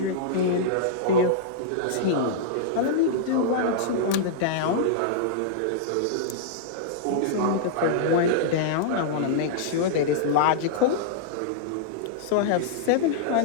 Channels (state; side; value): different; both; correlation -0.02